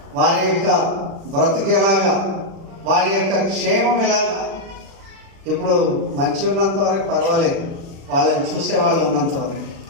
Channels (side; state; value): left; late; 36 ms